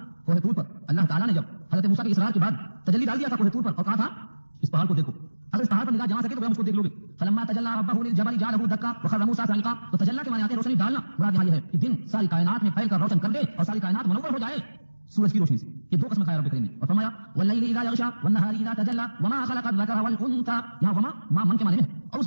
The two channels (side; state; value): both; inverted; correlation -1.00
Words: کوہ طور پر اللہ تعالیٰ نے جب حضرت موسیٰ کی اصرار کے بعد تجلی ڈال دیا تھا کوہ طور پر، اور کہا تھا اس پہاڑ کو دیکھو، اگر اس پہاڑ پر نگاہ جما سکے تو ہم اس کو دیکھ لو گے. فلما تجلی ربہ للجبل جعلہ دکا وخر موسیٰ صعقا. تو تجلی کے معنی آتے ہیں روشنی ڈالنا. مراد یہاں یہ ہے کہ دن ساری کائنات میں پھیل کر روشن کر دے اور ساری کائنات منور ہو جائے سورج کی روشنی سے. یہ دو قسم کھایا رب کریم نے. اور فرمایا واللیل اذا یغشی والنہار اذا تجلی وما خلق الذکر والانثى. یہاں وما ما من کے معنی میں، اور